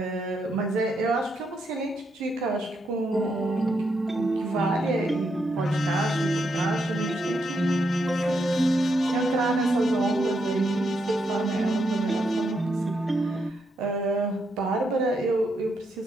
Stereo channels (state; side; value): normal; both; correlation 0.80